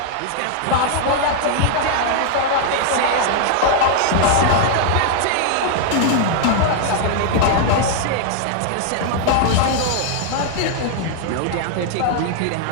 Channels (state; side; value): different; both; correlation 0.00